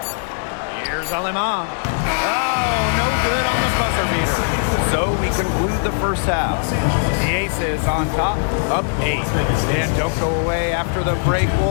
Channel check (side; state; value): right; silent; 60 dB below the other